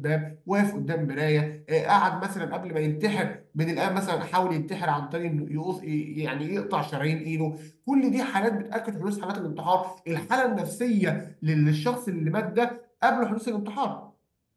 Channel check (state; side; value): identical; both; correlation 1.00